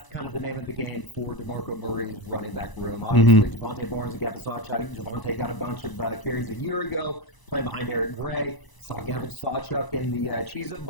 kind of the name of the game for DeMarco Murray's running back room. Obviously, Javonte Barnes and Gavin Sawchuk. Javonte got a bunch of carries a year ago playing behind Eric Gray. Saw Gavin Sawchuk in the Cheez-It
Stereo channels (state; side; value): late; right; 1.0 ms